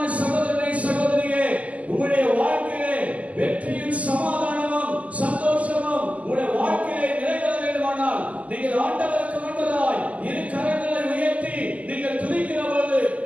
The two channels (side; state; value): left; late; 0.071 ms